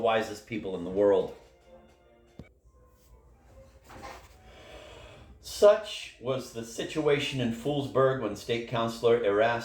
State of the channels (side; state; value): both; identical; correlation 1.00